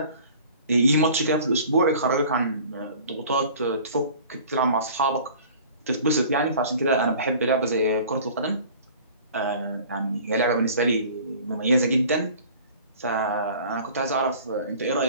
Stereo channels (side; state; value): both; inverted; correlation -0.46